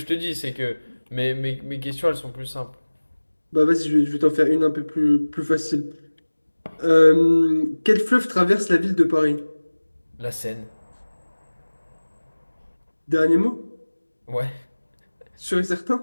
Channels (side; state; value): both; inverted; correlation -1.00